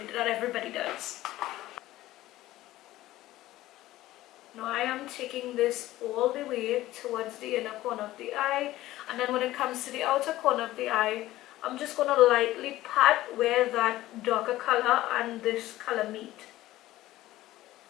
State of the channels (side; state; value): right; quieter; 15.9 dB